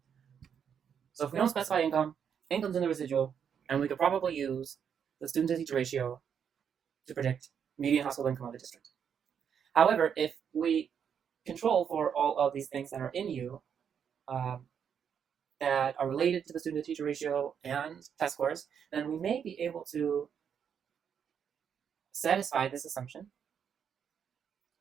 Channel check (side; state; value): left; quieter; 7.7 dB